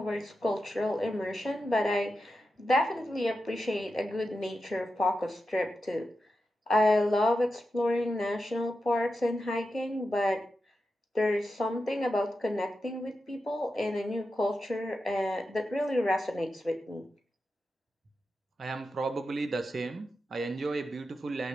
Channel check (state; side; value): normal; both; correlation 0.90